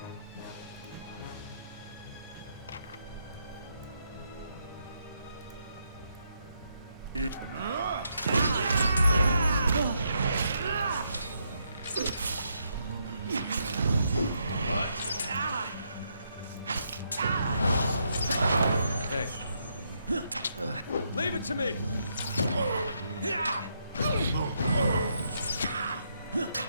Hey. Leave it to me!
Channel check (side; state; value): both; inverted; correlation -0.77